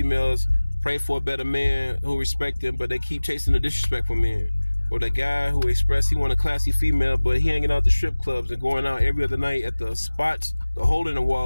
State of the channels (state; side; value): inverted; both; correlation -1.00